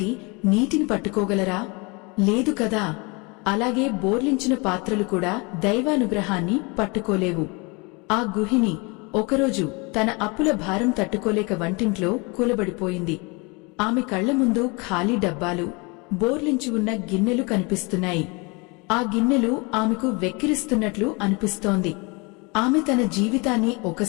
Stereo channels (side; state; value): right; quieter; 28.7 dB